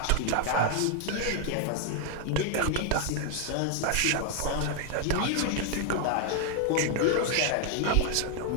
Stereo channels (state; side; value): different; both; correlation 0.00